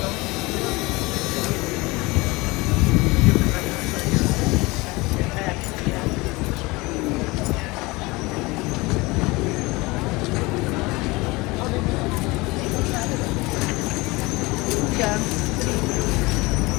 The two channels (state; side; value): quieter; right; 23.3 dB